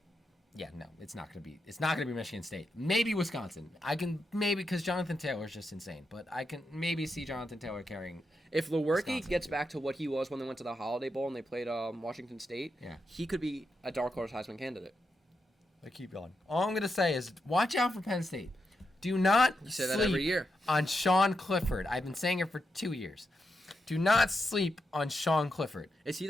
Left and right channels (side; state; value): both; normal; correlation 0.85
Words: Yeah, no, it's not going to be. It's not going to be Michigan State. Maybe Wisconsin. I can because Jonathan Taylor's just insane. But I can maybe see Jonathan Taylor carrying. If Lewerke gets back to what he was when they went to the Holiday Bowl and they played Washington State, he could be a dark horse Heisman candidate. I keep going. All I'm going to say is watch out for Penn State. Do not say that every year on Sean Clifford. I've been saying it for 2 years. Do not sleep on Sean Clifford. Is he